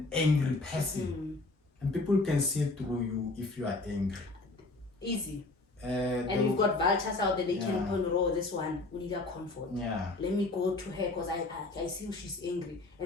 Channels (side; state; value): right; quieter; 3.2 dB